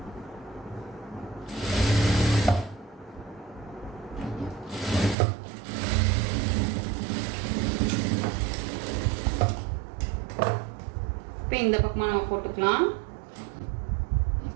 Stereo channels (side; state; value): left; drops out; at 5.2 s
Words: இப்போ இந்த பக்கமாக நம்ம போட்டுக்கலாம்.